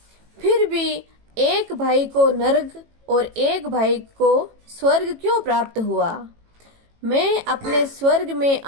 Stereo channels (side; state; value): left; late; 18 ms